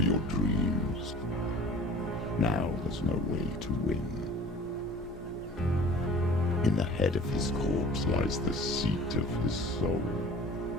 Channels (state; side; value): normal; both; correlation 0.45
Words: your dreams. Now there's no way to win. In the head of his corpse lies the seat of his soul.